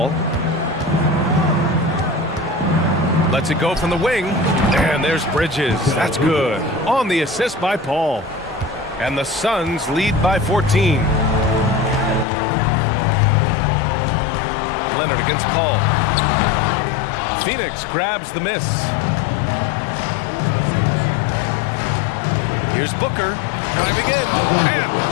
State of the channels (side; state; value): right; drops out; at 12.2 s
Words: Lets it go from the wing. And there's Bridges. That's good. On the assist by Paul. And the Suns lead by 14. Leonard against Paul. Phoenix grabs the miss. Here's Booker. Driving in. And